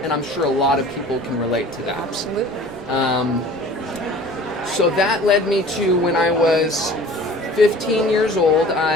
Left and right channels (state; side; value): normal; both; correlation 0.45